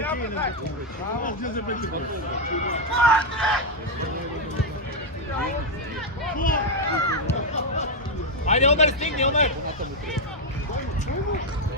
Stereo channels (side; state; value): both; normal; correlation 0.02